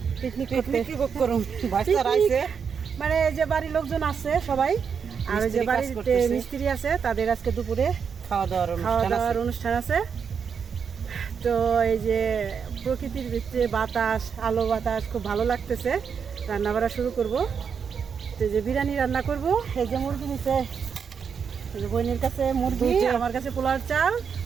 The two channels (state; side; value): quieter; left; 6.6 dB